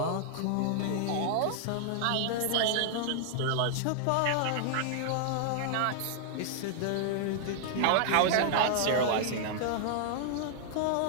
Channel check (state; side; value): different; both; correlation -0.01